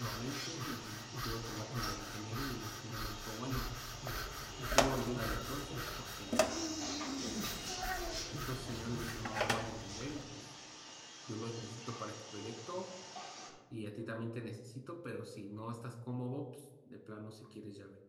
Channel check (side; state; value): both; identical; correlation 1.00